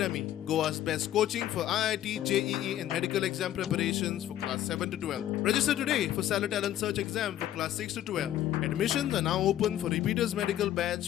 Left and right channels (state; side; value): quieter; right; 12.4 dB